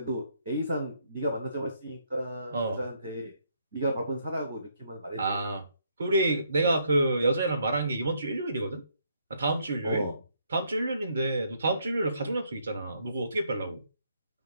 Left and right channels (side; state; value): both; inverted; correlation -0.72